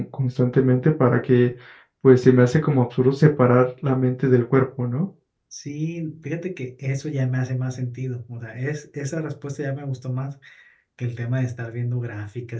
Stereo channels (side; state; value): both; identical; correlation 1.00